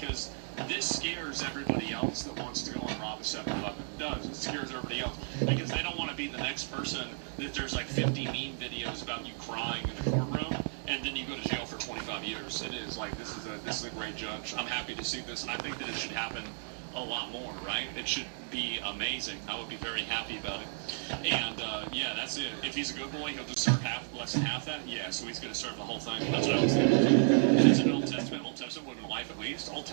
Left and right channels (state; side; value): silent; left; digital silence